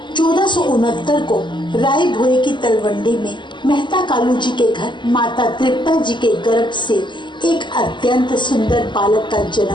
1469 को राय भोए की तलवंडी में मेहता कालू जी के घर माता तृप्ता जी के गर्भ से एक अत्यंत सुंदर बालक का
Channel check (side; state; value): right; late; 0.22 ms